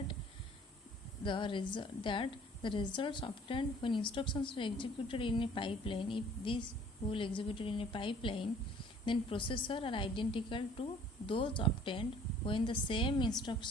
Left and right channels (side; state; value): both; normal; correlation 0.54